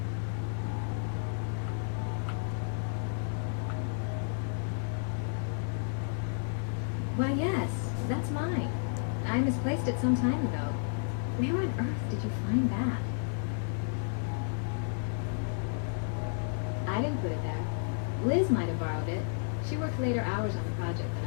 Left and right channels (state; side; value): silent; right; digital silence